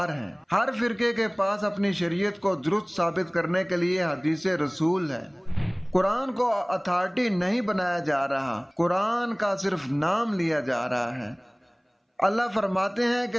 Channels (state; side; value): identical; both; correlation 1.00